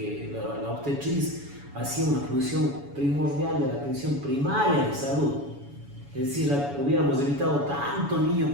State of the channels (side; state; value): left; late; 7.1 ms